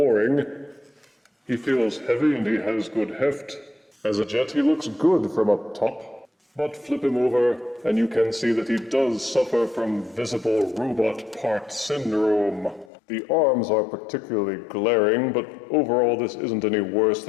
He feels heavy and he has good heft. As a jet, he looks good from up top. But flip him over, and you can see that he does suffer from visible robot part syndrome. The arms are particularly glaring, but overall this isn't any worse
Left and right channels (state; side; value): drops out; right; at 12.9 s